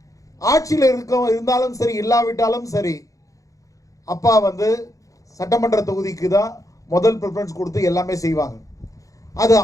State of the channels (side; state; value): right; late; 0.16 ms